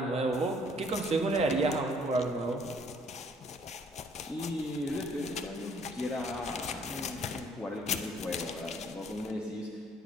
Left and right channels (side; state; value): both; normal; correlation 0.61